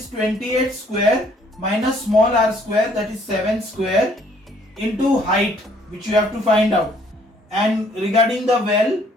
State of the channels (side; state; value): both; normal; correlation 0.62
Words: 28 square, minus small r square, that is 7 square, into height, which you have to find out. And regarding the well,